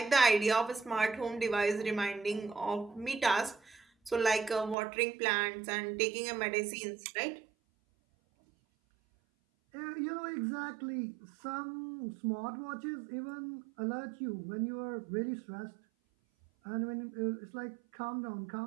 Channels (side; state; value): left; drops out; at 4.8 s